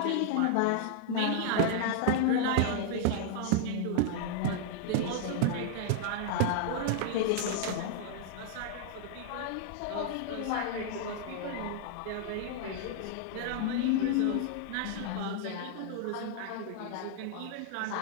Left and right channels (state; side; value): different; both; correlation -0.01